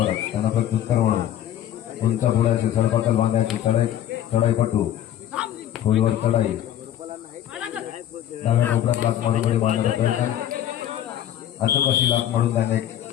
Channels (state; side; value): quieter; right; 11.4 dB